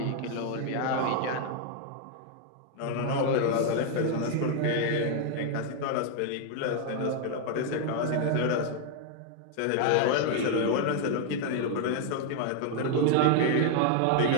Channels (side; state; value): both; different; correlation 0.00